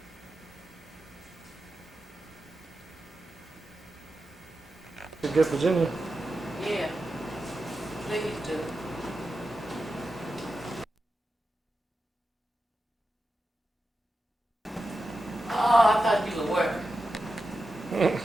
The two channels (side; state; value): both; normal; correlation 0.91